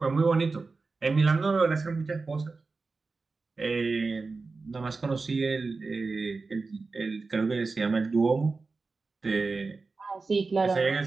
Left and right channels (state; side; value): quieter; left; 4.0 dB